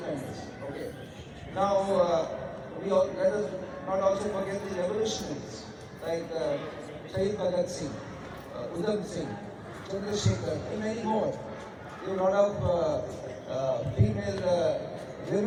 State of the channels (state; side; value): identical; both; correlation 1.00